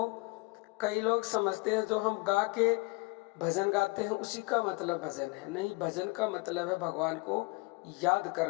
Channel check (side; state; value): right; quieter; 26.0 dB